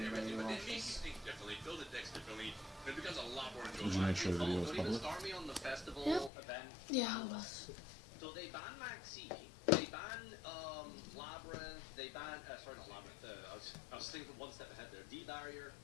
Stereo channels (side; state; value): right; drops out; at 6.3 s